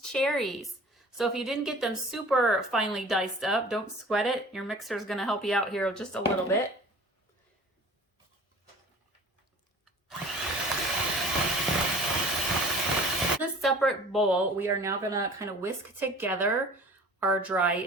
cherries. So if you didn't get them super finely diced up, don't sweat it. Your mixer is gonna help you out here just a little bit. In a separate bowl, we are now gonna kind of whisk together our dry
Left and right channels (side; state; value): both; normal; correlation 0.45